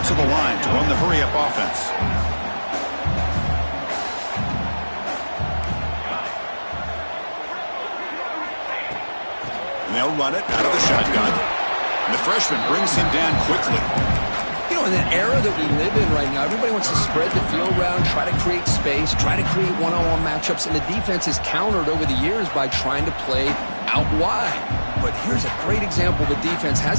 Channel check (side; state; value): both; inverted; correlation -1.00